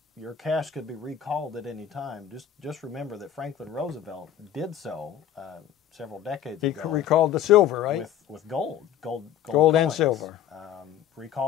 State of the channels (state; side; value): quieter; right; 10.1 dB